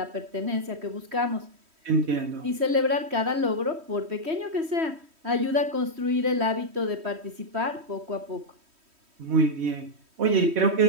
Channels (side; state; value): left; late; 3.1 ms